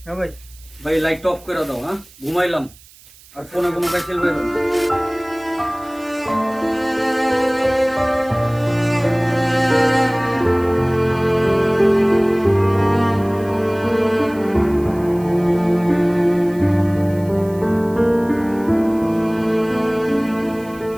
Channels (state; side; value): noise; right; hiss, 24 dB below the sound